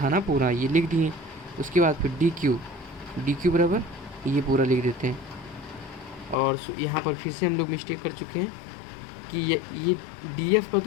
ना पूरा, ये लिख दिए। उसके बाद फिर डी क्यू बराबर ये पूरा लिख देते हैं। और यहाँ पर फिर से हम लोग मिस्टेक कर चुके हैं कि ये डी एफ का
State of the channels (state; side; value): drops out; right; at 6.4 s